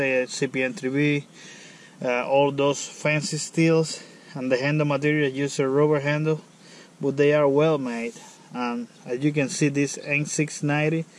CPN3B, all those fancy steels, and the handle material use a rubber handle, but they are well made. And as you can see, this N690,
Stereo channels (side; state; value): both; identical; correlation 1.00